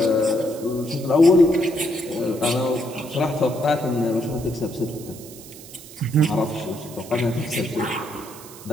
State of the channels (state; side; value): noise; right; hiss, 17 dB below the sound